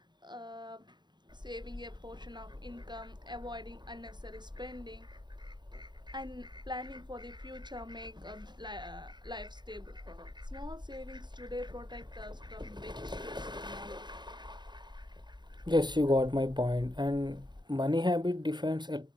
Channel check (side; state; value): left; late; 0.21 ms